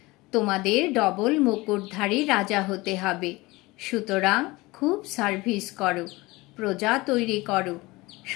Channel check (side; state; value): right; quieter; 21.7 dB